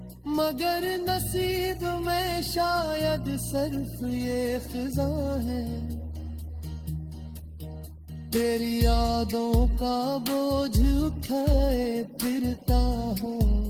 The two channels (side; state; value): both; identical; correlation 1.00